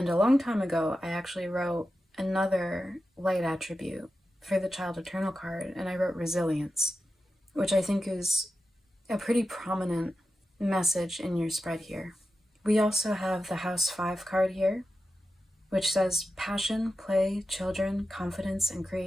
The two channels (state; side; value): normal; both; correlation 0.91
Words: a long time ago, I actually wrote another light attribute for the Child Eternal card, and I wrote resilience, which I think is a pretty prominent message in your spread here. We also have the House 5 card here, which says passion, play, children, confidence, and